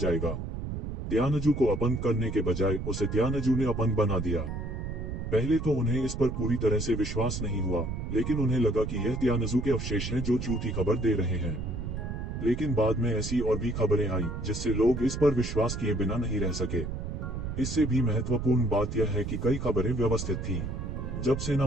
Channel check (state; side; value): noise; right; rumble, 5 dB below the sound